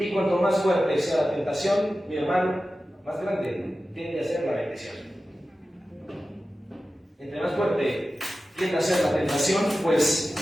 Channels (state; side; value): normal; both; correlation 0.94